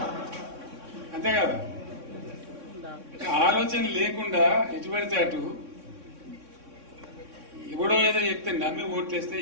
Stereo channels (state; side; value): late; left; 3.6 ms